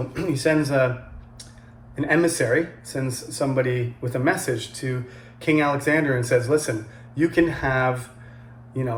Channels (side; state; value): both; identical; correlation 1.00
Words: he sends an emissary, sends somebody with a message to King Alexander and says, listen, you can have,